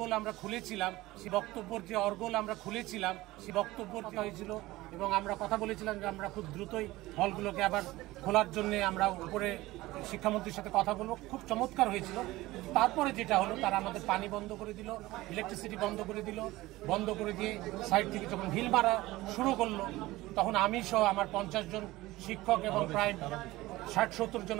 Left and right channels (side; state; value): left; quieter; 18.5 dB